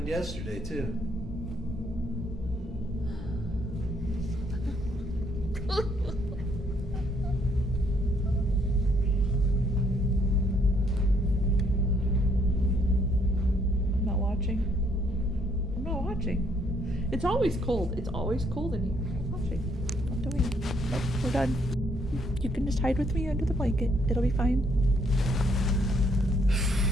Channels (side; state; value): both; normal; correlation 0.69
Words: yesterday, too? I'm not watching. I'm not watching. It's always cold. It's always cold in here. I'm not watching. I'm doing it. Nope, we're done. You can just hide with me under the blanket. It'll be fine.